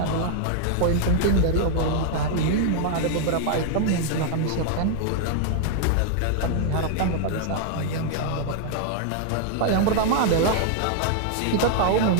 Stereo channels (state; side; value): different; both; correlation 0.00